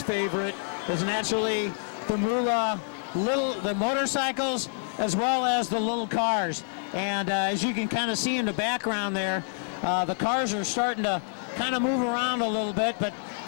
favorite is naturally the Moolah, the motorcycles as well as the little cars. And as you can kind of see in the background there, the cars are starting to kind of move around a little bit, but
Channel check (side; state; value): right; silent; digital silence